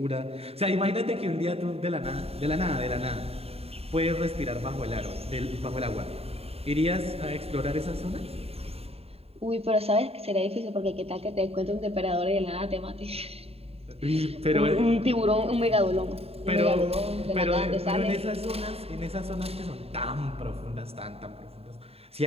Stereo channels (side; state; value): left; late; 0.29 ms